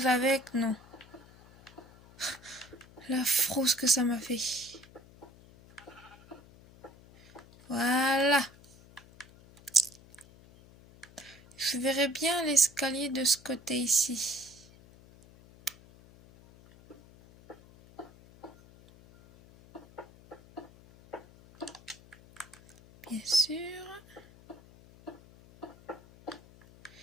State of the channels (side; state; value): left; noise; hum, 23 dB below the sound